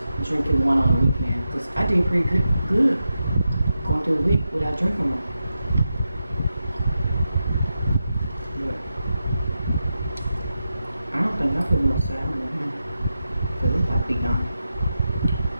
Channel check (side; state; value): both; inverted; correlation -0.89